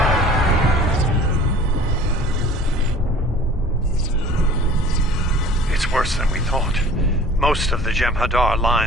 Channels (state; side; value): normal; both; correlation 0.47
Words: It's worse than we thought. Most of the Jem'Hadar